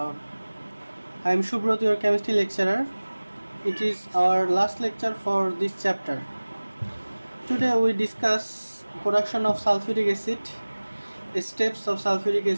am Subrot, your chemistry lecturer. It is our last lecture for this chapter. Today we discuss production of sulfuric acid, steps of sulfuric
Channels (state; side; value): inverted; both; correlation -1.00